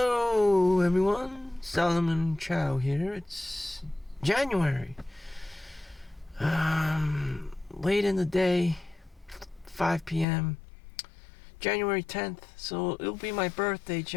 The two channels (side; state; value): right; drops out; at 10.2 s